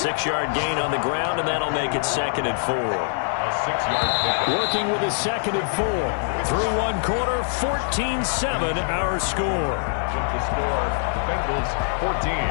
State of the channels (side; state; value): right; silent; 63 dB below the other